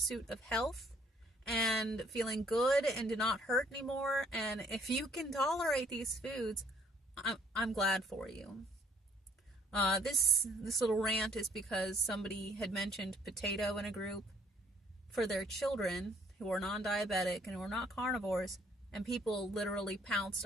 of health and feeling good and to not hurt anymore. And if you can tolerate these foods, I'm glad for you. This little rant is because somebody had mentioned potato in a group for their children who are non-diabetic and who are not carnivores, and people literally pounced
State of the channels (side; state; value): both; normal; correlation 0.63